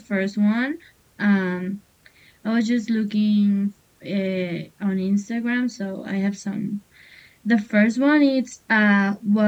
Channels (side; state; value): both; identical; correlation 1.00